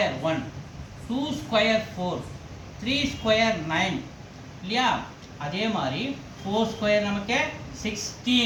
1, 2 ஸ்கொயர் 4, 3 ஸ்கொயர் 9 இல்லையா? அதே மாதிரி 4 ஸ்கொயர் நமக்கு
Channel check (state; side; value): identical; both; correlation 1.00